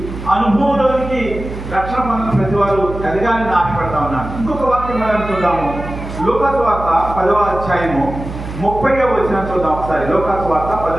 అనుభవంలోనికి రక్షణ పొందిన ప్రతి వారు ఎదగాలని ఆశపడతా ఉన్నాను. ఇంకొక వాక్యం మనం చూద్దాము. లూకాసు వార్త 10వ అధ్యాయము 30వ వచనం చూద్దాం ఒకసారి. లూకాసు వార్త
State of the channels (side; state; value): right; noise; hum, 9 dB below the sound